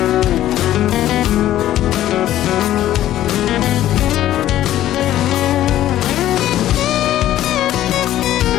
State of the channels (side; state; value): right; quieter; 13.1 dB